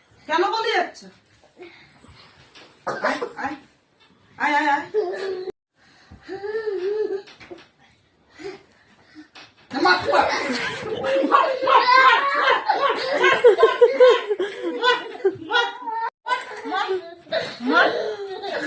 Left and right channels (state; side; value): identical; both; correlation 1.00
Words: কেন পালিয়ে যাচ্ছে? আয় আয় আয় আয় আয়। মার মার